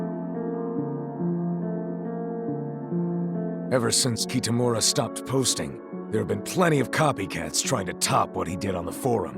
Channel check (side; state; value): both; identical; correlation 1.00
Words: Ever since Kitamura stopped posting, there have been plenty of copycats trying to top what he did on the